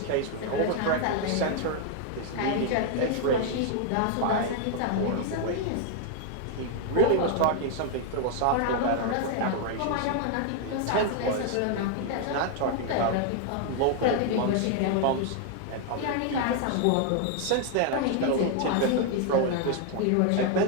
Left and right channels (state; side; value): different; both; correlation 0.00